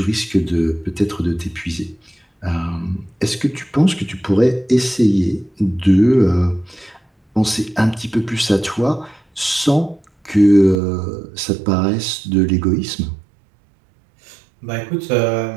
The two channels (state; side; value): drops out; left; at 10.8 s